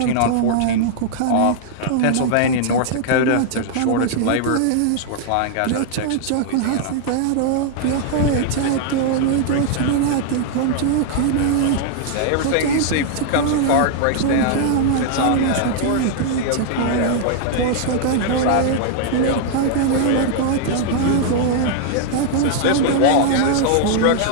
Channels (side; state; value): both; different; correlation -0.01